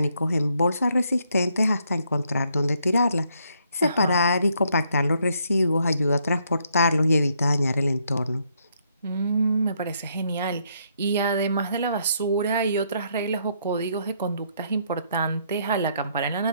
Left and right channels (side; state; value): both; inverted; correlation -0.72